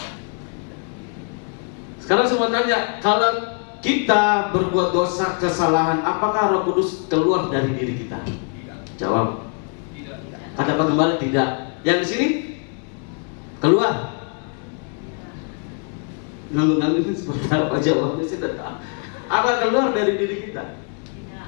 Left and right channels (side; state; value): right; quieter; 39.7 dB